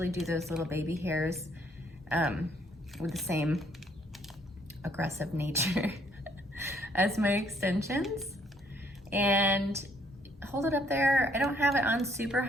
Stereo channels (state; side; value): normal; both; correlation 0.66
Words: do those little baby hairs with the same aggressive nature as my extensions. And hold it up there. I don't have it on super